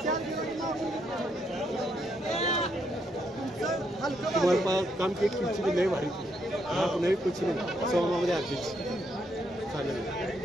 तुम्हाला काम की कुछ लय भारी नाही कुछ नाही सौमामध्ये आधीच चालेल.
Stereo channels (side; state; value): both; normal; correlation 0.76